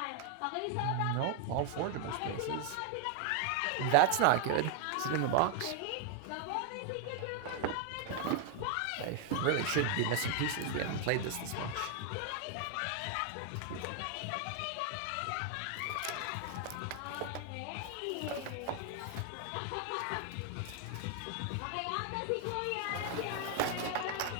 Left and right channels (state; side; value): different; both; correlation 0.00